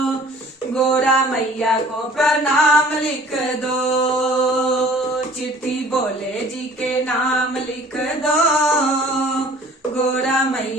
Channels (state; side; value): normal; both; correlation 0.50